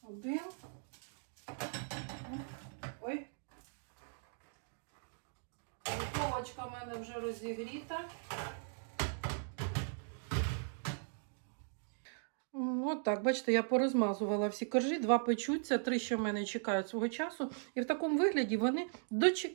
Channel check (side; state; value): left; silent; digital silence